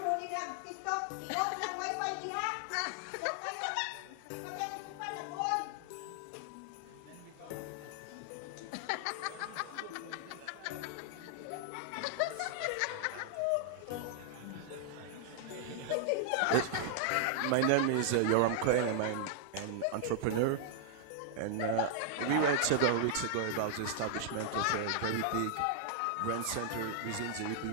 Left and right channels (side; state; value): both; different; correlation 0.00